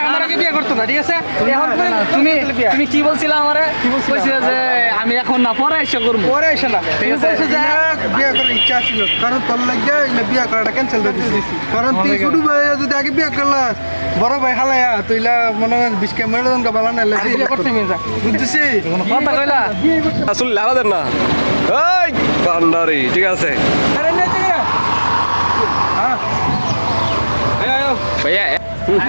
আমার আগে বিয়ে করতো না, ঠিক আছে? এখন তুমি কি বলছিলে আমারে? কইছিলে যে আমি এখন না পরে এসে করবো, পরে এসে না, ঠিক আছে? বিয়ে করার ইচ্ছা ছিল, কারণ তোর লাগে বিয়ে করাটা ক্যান্সেল করে দিয়েছি। কারণ তুই ছোট ভাই যদি আগে বিয়ে করলাস, বড় ভাই হালায়া তুইলা মনে হয় বিস্কে মেরোদন কা বালা না বিয়ে করতে মেয়ে যা বুঝছিস? কথা কইলা আসলে লাগাদের না এই ভান্ডারি, ঠিক আছে ভাইয়া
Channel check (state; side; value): inverted; both; correlation -1.00